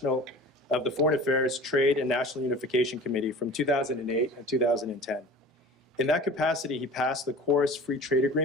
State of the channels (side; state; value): both; normal; correlation 0.40